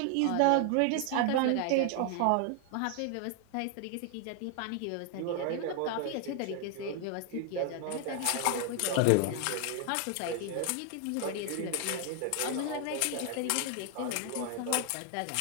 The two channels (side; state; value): both; different; correlation 0.00